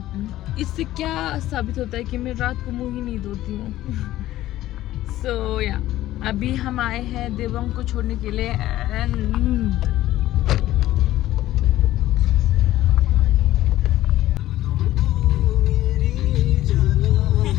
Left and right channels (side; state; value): right; quieter; 14.7 dB